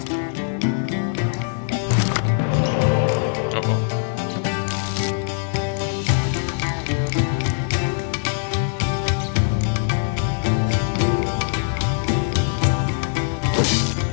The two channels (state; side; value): silent; right; 64 dB below the other